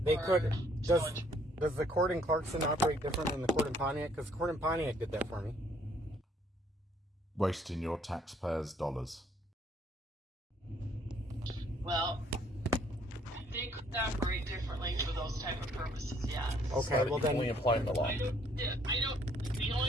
they or could. Does the court in Clarkson operate different than the court in Pontiac? Because the court in Pontiac did that for me. Wasting your taxpayers' dollars. Well, they could operate differently for those type of purposes, yeah. Okay, well then, only applying the law. I don't. The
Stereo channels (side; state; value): both; normal; correlation 0.64